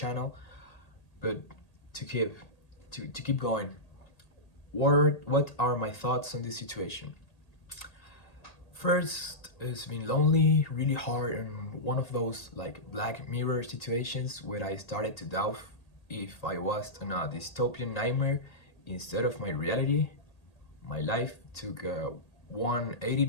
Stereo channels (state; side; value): late; right; 1.8 ms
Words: But to keep going, what are my thoughts on this situation? First, it's been lonely, really hard, and one of those like Black Mirror situations where I started to doubt if I was in a dystopian nightmare instead of my reality. My life took a